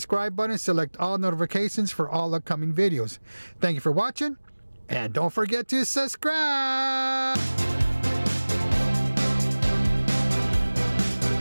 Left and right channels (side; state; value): both; inverted; correlation -1.00